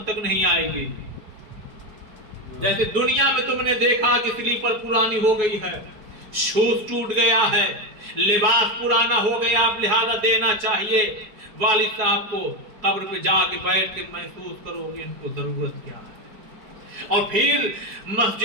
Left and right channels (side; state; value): left; late; 4.6 ms